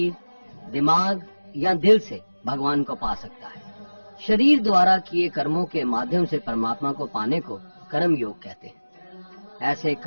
दिमाग या दिल से भगवान को पा सकता है। शरीर द्वारा किए कर्मों के माध्यम से परमात्मा को पाने को कर्म योग कहते हैं। ऐसे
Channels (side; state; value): both; inverted; correlation -1.00